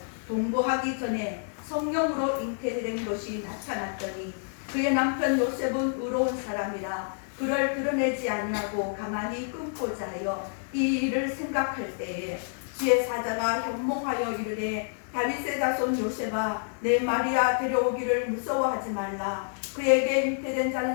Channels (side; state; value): right; silent; 59 dB below the other